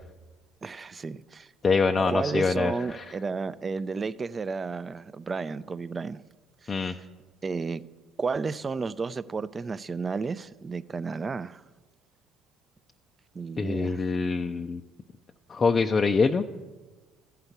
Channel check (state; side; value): normal; both; correlation 0.86